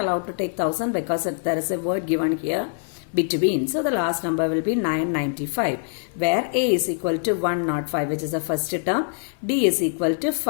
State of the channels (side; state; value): right; silent; 55 dB below the other